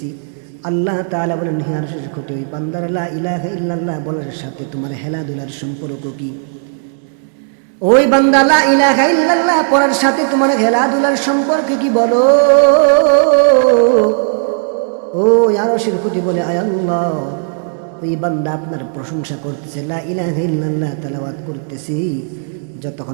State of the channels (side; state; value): left; silent; digital silence